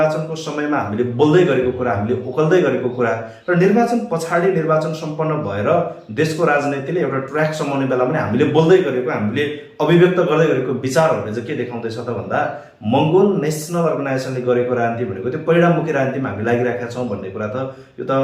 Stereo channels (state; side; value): identical; both; correlation 1.00